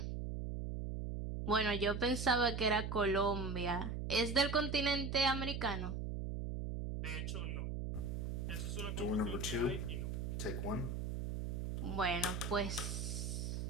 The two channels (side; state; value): right; noise; hum, 3 dB below the sound